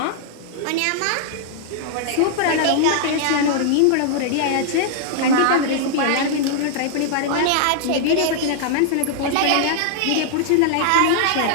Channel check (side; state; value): both; different; correlation -0.01